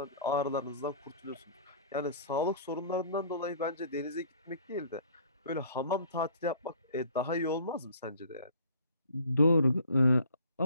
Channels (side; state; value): both; inverted; correlation -0.52